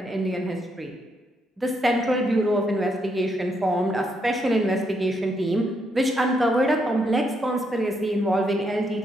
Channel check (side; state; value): both; normal; correlation 0.77